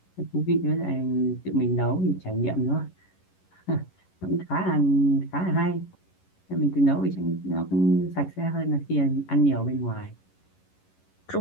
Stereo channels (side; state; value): right; late; 11 ms